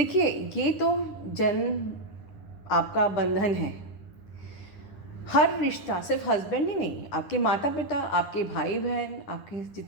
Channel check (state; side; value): late; right; 9.8 ms